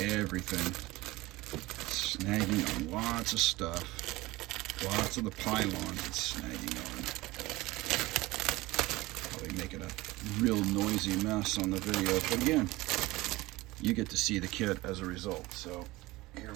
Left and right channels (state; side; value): quieter; left; 19.9 dB